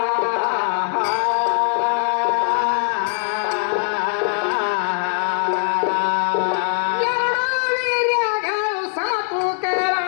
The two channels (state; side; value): silent; right; 65 dB below the other